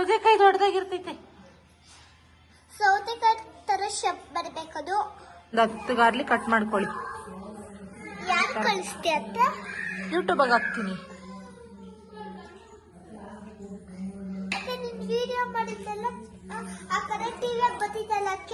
ದೊಡ್ಡದಾಗಿರ್ತೈತೆ. ಸೌತೆಕಾಯಿ ತರ ಶೇಪ್ ಬರ್ಬೇಕದು. 10 ಗಾರ್ಲಿಕ್ ಕಟ್ ಮಾಡ್ಕೊಳ್ಳಿ. ಯಾರು ಕಳಿಸ್ತಿ ಅಂತ? ಯೂಟ್ಯೂಬ್ ಹಾಕ್ತೀನಿ. ಮತ್ತೆ ನಿನ್ ವಿಡಿಯೋ ಮಾಡಿದ್ದೆಲ್ಲ ಆ ಕಡೆ ಟಿವಿ ಬರ್ತಿದ್ದಲ್ಲ,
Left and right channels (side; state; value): both; identical; correlation 1.00